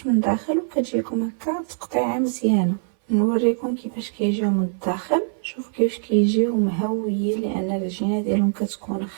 من الداخل وكتجيكم هكا تقطيعه مزيانه. نوريكم كيفاش كيجيو من الداخل. شوف كيفاش كيجيو مهويين، لان العجينه ديالهم كتكون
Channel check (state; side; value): silent; left; 63 dB below the other